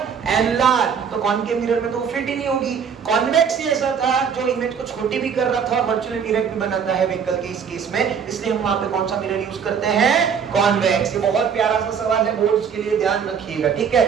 एनलार्ज। तो कॉनकेव मिरर में तो वो फिट ही नहीं होगी। कॉन्वेक्स ही ऐसा था जो इमेज को छोटी भी कर रहा था और वर्चुअल इरेक्ट भी बनाता है व्हीकल के इस केस में, इसलिए हम वहां पे कौन सा मिरर यूज करते हैं, कॉन्वेक्स। ये बहुत प्यारा सा सवाल है, बोर्ड्स के लिए ध्यान रखिएगा, ठीक है।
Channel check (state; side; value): quieter; left; 7.0 dB